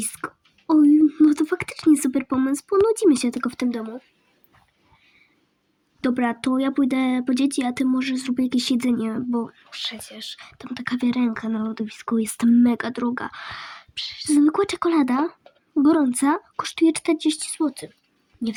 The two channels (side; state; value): both; identical; correlation 1.00